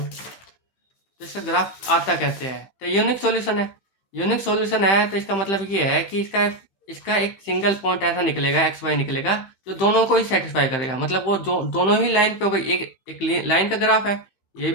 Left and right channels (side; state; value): right; late; 15 ms